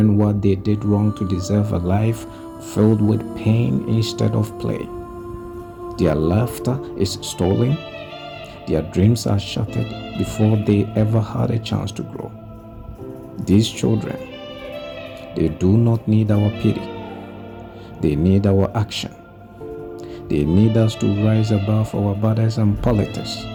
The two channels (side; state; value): both; identical; correlation 1.00